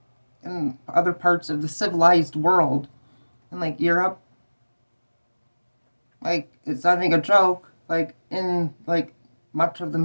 in other parts of the civilized world and like Europe. Like, it's not even a joke. Like, in like much of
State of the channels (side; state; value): both; inverted; correlation -1.00